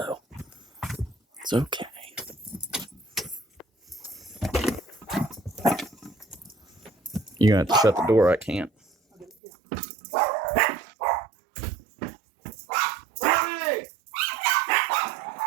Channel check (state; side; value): drops out; left; at 9.3 s